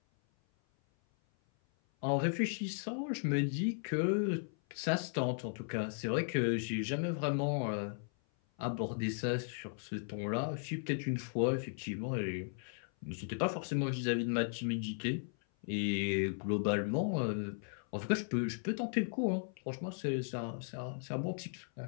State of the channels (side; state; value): right; silent; 54 dB below the other